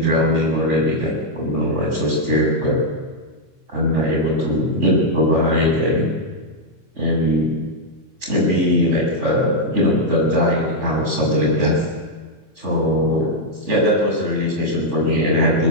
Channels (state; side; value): normal; both; correlation -0.03